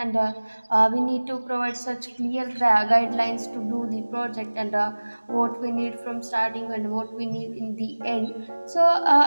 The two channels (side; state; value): both; inverted; correlation -1.00